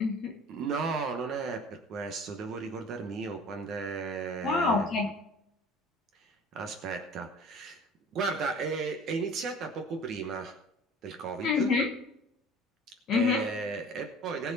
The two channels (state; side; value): normal; both; correlation 0.45